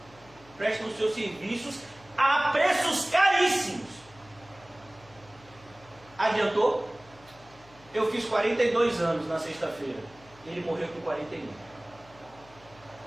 prestam os seus serviços a preços caríssimos. Adiantou? Eu fiz 42 anos na sexta-feira. Ele morreu com 41.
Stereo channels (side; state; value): left; noise; hum, 25 dB below the sound